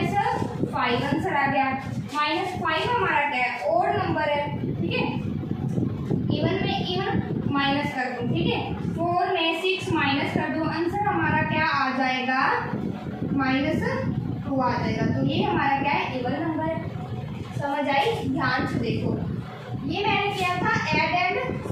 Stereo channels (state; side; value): identical; both; correlation 1.00